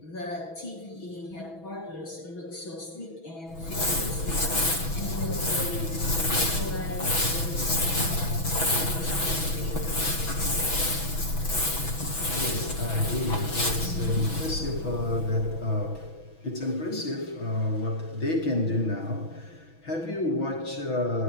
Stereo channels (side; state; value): right; late; 6.1 ms